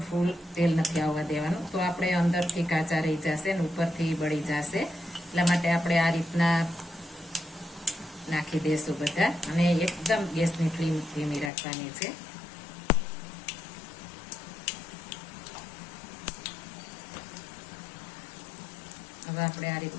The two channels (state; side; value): drops out; right; at 11.5 s